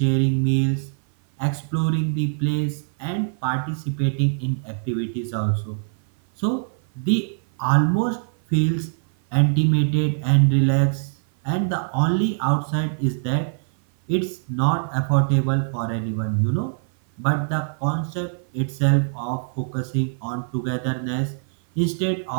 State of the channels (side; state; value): left; silent; 58 dB below the other